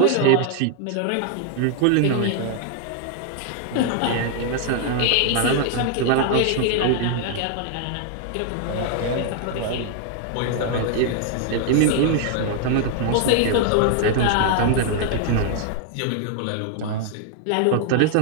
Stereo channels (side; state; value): both; different; correlation 0.00